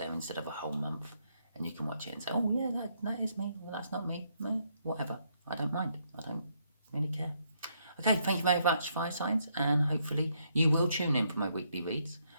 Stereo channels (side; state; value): both; inverted; correlation -0.74